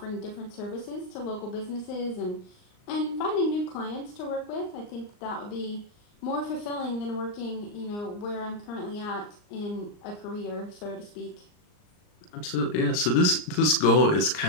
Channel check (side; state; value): right; late; 39 ms